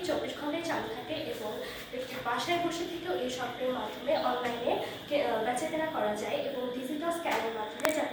24 ঘন্টায় চালু থাকে এবং একটি বাসায় বসে থেকেও এই শপের মাধ্যমে অনলাইনে বেচাকেনা করা যায় এবং ডিজিটাল স্ক্যানের মাধ্যমে,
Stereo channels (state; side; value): identical; both; correlation 1.00